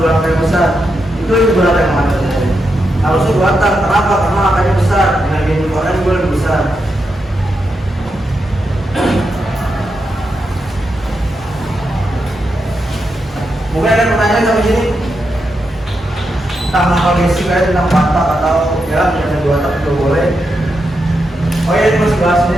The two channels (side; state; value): both; normal; correlation 0.85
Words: 2 angka yang besar. Itu berapa yang mana? Harusnya 2 tak. Kenapa? Karena angkanya besar. Energi inputannya juga lebih besar. Mungkin ada pertanyaan sampai sini tentang kondisi kayak tentang patak atau ya ada 2 tak juga boleh. Oh ya, ini masih bahas